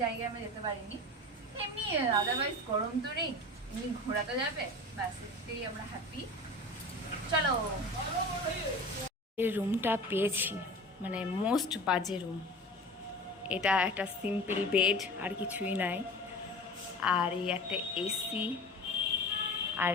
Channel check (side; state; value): both; normal; correlation 0.35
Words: জায়গায় আমরা যেতে পারিনি। এমনি আদারওয়াইজ গরম তো নেই, এমনি ঘোরাতে যাবে, ব্যাস এতেই আমরা হ্যাপি। চলো, এই রুমটা পেয়েছি, মানে মোস্ট বাজে রুম। এটা একটা সিম্পল বেড, আর কিছুই নাই। আর এই একটা এসি, আর